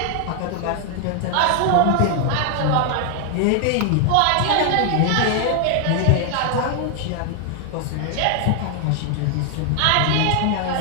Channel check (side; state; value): both; different; correlation 0.00